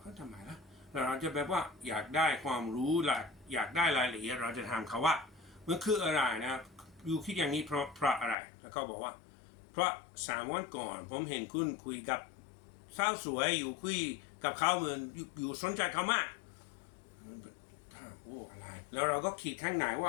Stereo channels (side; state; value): right; drops out; at 8.3 s